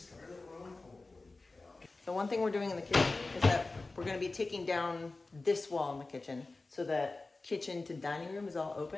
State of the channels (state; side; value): quieter; right; 3.4 dB